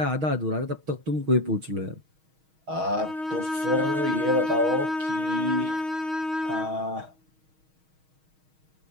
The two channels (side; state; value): left; late; 6.3 ms